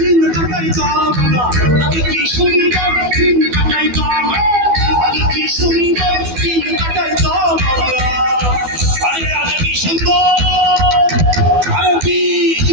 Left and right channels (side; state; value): left; late; 12 ms